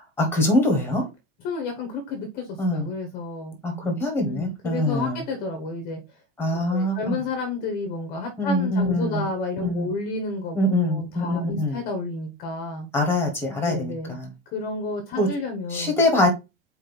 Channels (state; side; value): normal; both; correlation 0.29